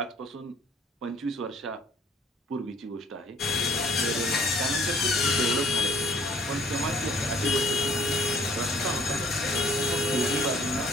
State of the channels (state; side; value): normal; both; correlation 0.58